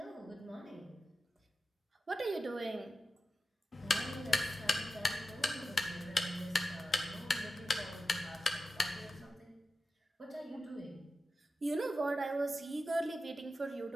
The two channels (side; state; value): both; normal; correlation 0.92